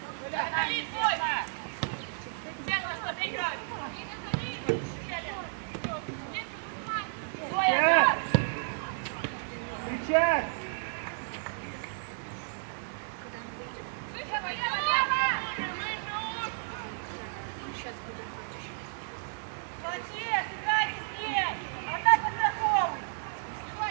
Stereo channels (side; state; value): left; silent; digital silence